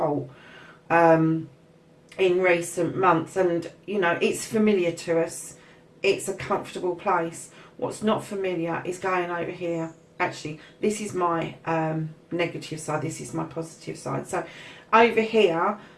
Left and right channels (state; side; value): identical; both; correlation 1.00